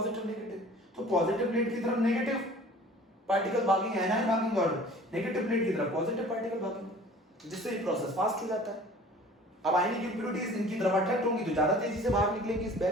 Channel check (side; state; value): both; normal; correlation 0.47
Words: नेगेटिव। तो पॉजिटिव प्लेट की तरफ नेगेटिव पार्टिकल भागेंगे, एनायन भागेंगे, और नेगेटिव प्लेट की तरफ पॉजिटिव पार्टिकल भागेंगे, जिससे ये प्रोसेस फास्ट हो जाता है। अब आयनिक इंप्योरिटीज इनकी तरफ अट्रैक्ट होंगी तो ज्यादा तेजी से बाहर निकलेंगी इस